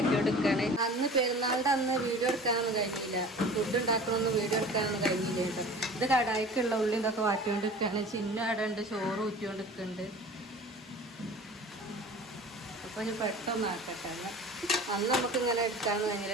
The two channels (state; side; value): normal; both; correlation 0.41